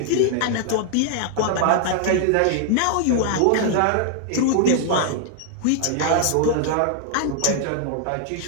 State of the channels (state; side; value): different; both; correlation 0.00